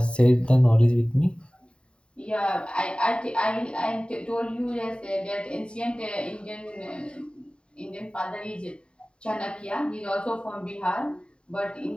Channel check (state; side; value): late; right; 0.053 ms